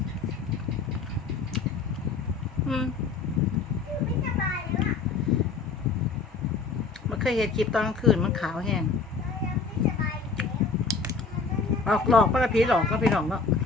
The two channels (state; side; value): quieter; right; 4.6 dB